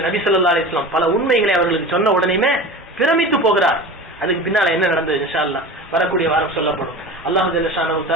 நபி ஸல்லல்லாஹு அலைஹி வஸல்லம் பல உண்மைகளை அவர்களுக்கு சொன்ன உடனேயுமே பிரமித்து போகிறார். அதுக்கு பின்னால என்ன நடந்தது இன்ஷா அல்லாஹ் வரக்கூடிய வாரம் சொல்லப்படும். அல்லாஹ் ஜல்ல ஷானஹு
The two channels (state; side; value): normal; both; correlation 0.33